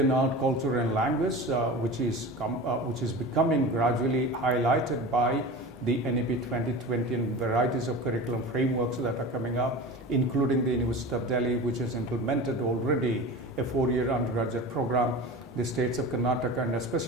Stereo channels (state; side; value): normal; both; correlation 0.31